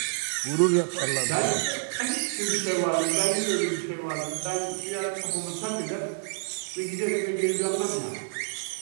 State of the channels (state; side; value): silent; left; digital silence